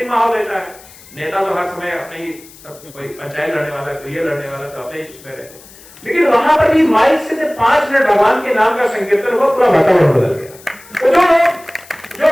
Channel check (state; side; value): noise; left; hiss, 22 dB below the sound